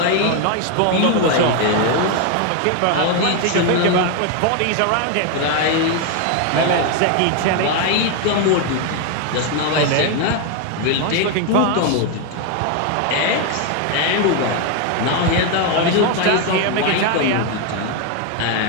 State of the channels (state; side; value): different; both; correlation 0.01